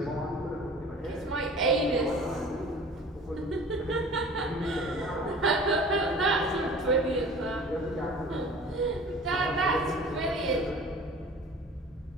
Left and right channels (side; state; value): both; normal; correlation 0.43